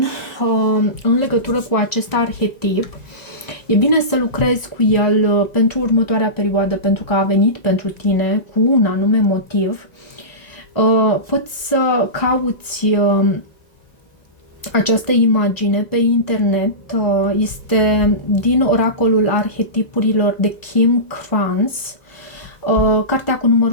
în legătură cu acest arhetip, e bine să lucrezi cu el pentru următoarea perioadă, pentru că a venit pentru tine cu un anume motiv. Poți să cauți această imagine pe internet, este din oracolul arhetipurilor de Kim Krans, cartea cu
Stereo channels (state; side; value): late; right; 1.9 ms